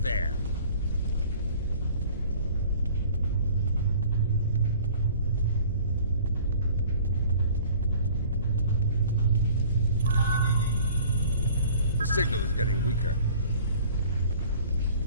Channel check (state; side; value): inverted; both; correlation -0.49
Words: there. The signal is getting weaker.